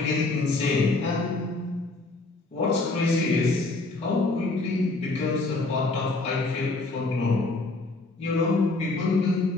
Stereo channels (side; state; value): right; quieter; 3.2 dB